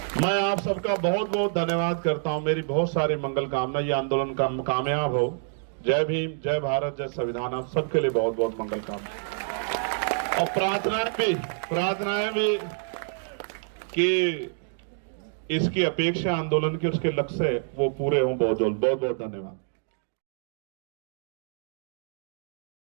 मैं आप सबका बहुत बहुत धन्यवाद करता हूं। मेरी बहुत सारी मंगल कामना, ये आंदोलन कामयाब हो। जय भीम, जय भारत, जय संविधान। आप सबके लिए बहुत बहुत मंगल कामना, और प्रार्थनाएं भी कि इसकी अपेक्षा आंदोलन के उसके लक्ष्य वो पूरे हों बहुत जल्द। बहुत बहुत धन्यवाद।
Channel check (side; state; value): left; silent; digital silence